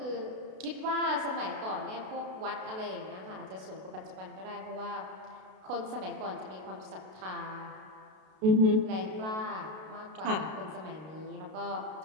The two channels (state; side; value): late; left; 32 ms